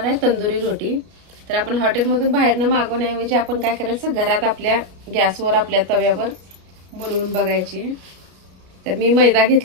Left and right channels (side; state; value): left; late; 33 ms